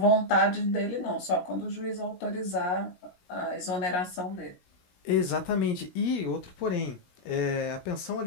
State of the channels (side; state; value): right; late; 17 ms